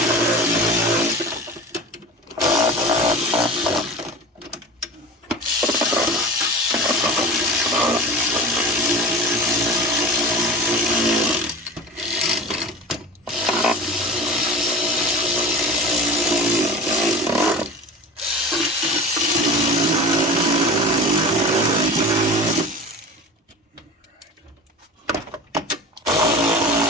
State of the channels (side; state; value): both; normal; correlation 0.34